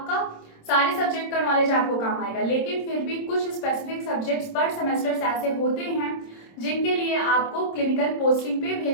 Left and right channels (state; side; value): late; right; 26 ms